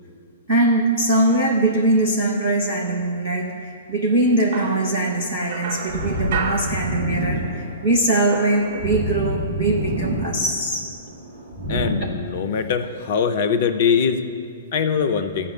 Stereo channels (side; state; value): both; inverted; correlation -0.34